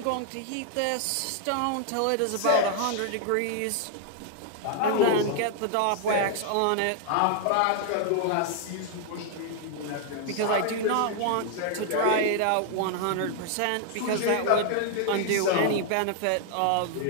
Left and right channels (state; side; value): different; both; correlation 0.00